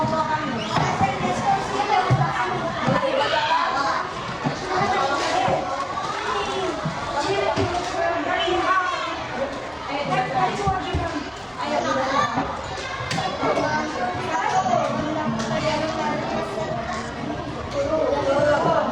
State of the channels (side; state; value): both; identical; correlation 1.00